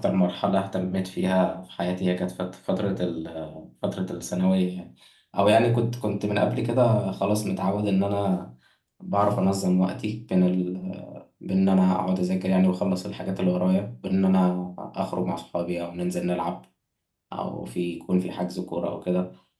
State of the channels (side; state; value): both; identical; correlation 1.00